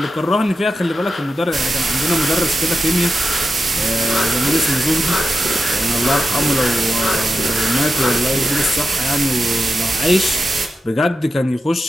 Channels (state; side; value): normal; both; correlation 0.90